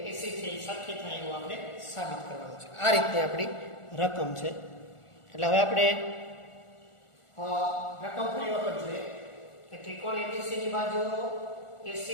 AC થી સરખી થાય એવું આપણે સાબિત કરવાનું છે. આ રીતે આપણી રકમ છે. એટલે હવે આપણે રકમ ફરી વખત જોઈએ કે ત્રિકોણ ABC ની બાજુ AC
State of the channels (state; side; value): late; right; 1.4 ms